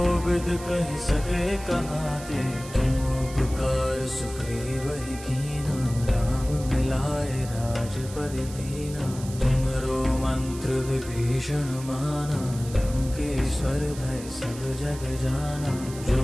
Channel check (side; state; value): right; noise; hiss, 15 dB below the sound